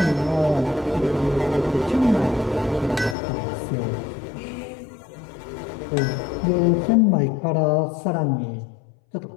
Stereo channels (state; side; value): drops out; right; at 3.2 s